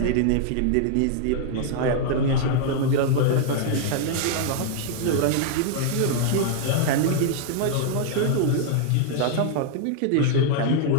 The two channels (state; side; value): different; both; correlation -0.01